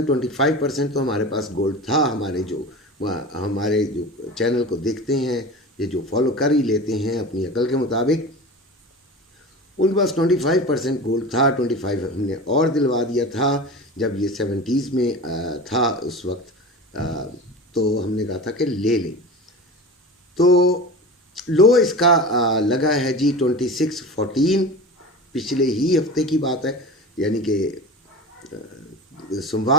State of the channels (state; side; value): normal; both; correlation 0.32